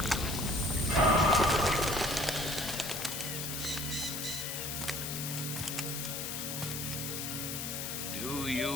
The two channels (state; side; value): noise; left; hiss, 4 dB below the sound